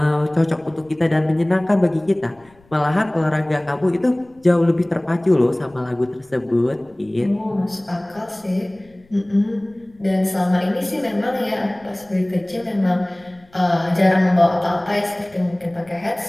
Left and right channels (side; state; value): left; noise; rumble, 30 dB below the sound